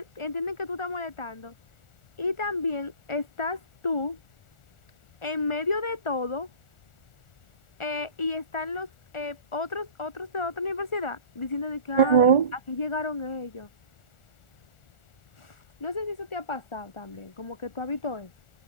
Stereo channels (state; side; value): late; right; 1.4 ms